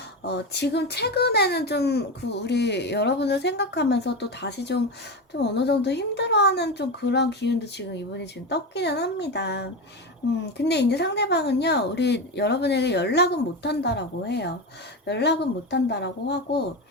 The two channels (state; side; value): normal; both; correlation 0.19